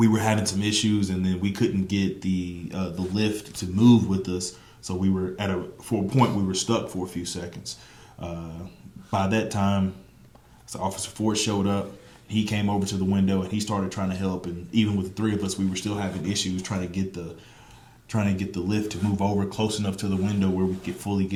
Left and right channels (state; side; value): identical; both; correlation 1.00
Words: were having some issues, and then we couldn't get the lift to move with us. So we were for a point we were stuck for a few seconds. By that time, so Officer Ford showed up. He came over to the window and he started trying to help. And even with the three of us, we were still having issues trying to get the lift to move over close enough to the window where we could fully